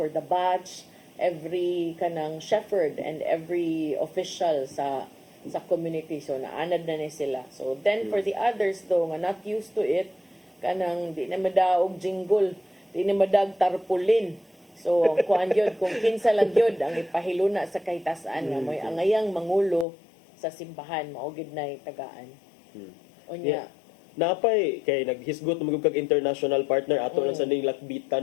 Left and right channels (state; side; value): drops out; right; at 19.9 s